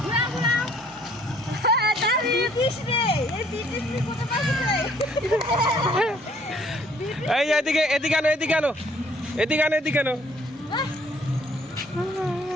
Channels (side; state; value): both; normal; correlation 0.61